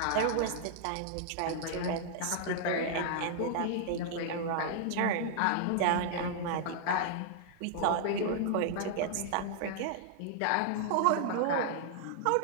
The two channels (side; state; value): both; different; correlation -0.01